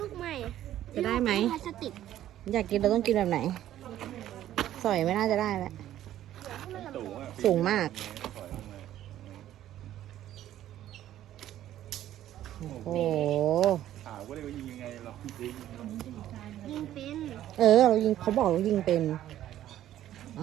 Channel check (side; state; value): left; quieter; 12.5 dB